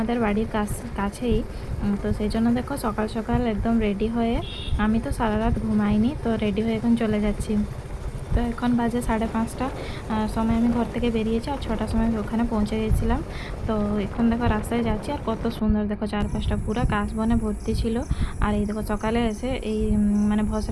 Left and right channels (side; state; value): both; identical; correlation 1.00